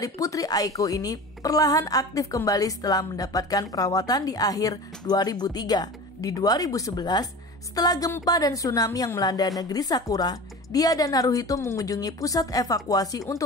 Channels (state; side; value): normal; both; correlation 0.34